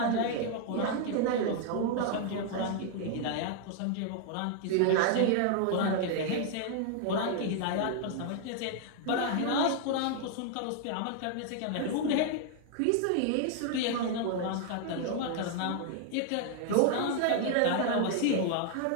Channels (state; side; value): different; both; correlation 0.00